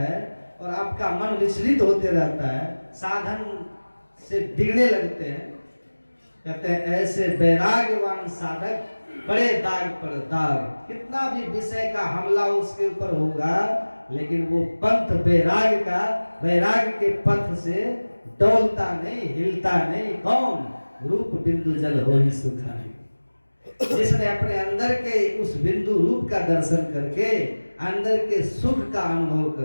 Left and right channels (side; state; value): both; inverted; correlation -1.00